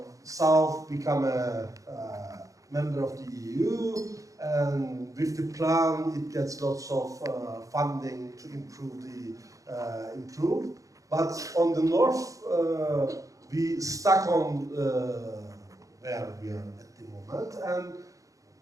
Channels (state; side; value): late; left; 0.16 ms